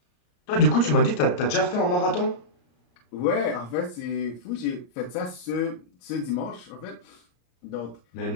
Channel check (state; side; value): late; right; 34 ms